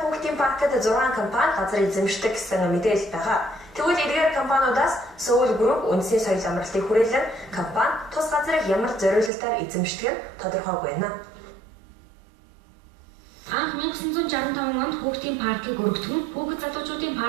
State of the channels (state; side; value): drops out; left; at 9.3 s